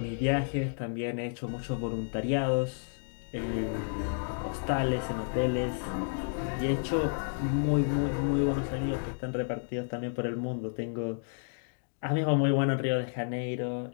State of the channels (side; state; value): right; silent; digital silence